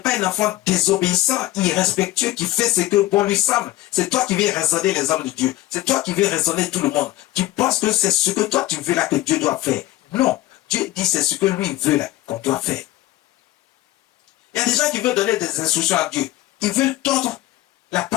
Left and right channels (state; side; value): quieter; right; 16.4 dB